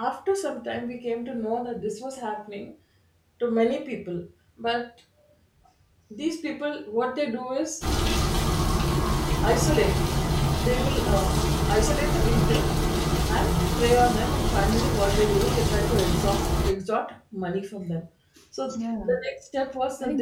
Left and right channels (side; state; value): both; identical; correlation 1.00